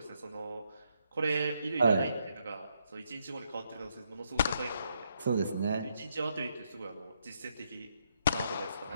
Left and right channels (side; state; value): both; inverted; correlation -0.77